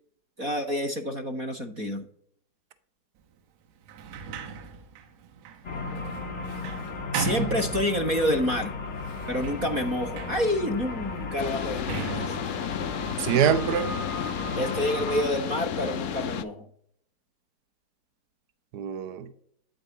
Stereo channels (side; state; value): left; late; 4.2 ms